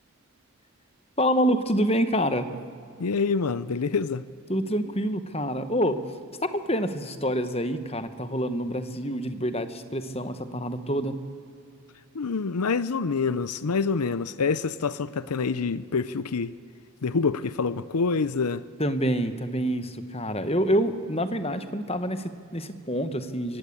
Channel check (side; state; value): both; normal; correlation 0.30